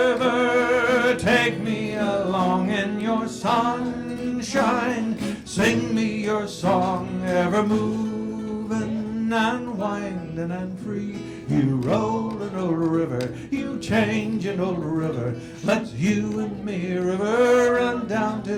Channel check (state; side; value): identical; both; correlation 1.00